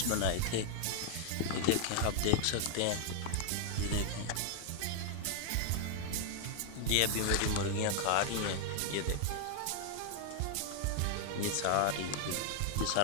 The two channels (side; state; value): both; different; correlation 0.00